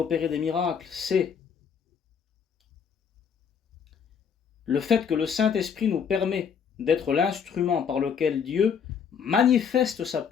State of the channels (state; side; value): quieter; right; 7.0 dB